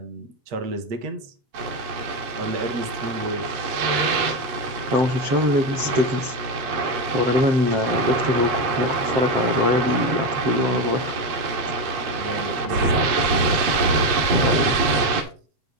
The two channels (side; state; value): left; late; 8.3 ms